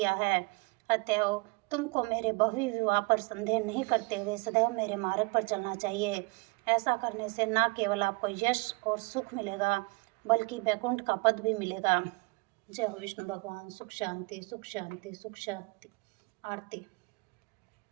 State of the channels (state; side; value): quieter; left; 29.2 dB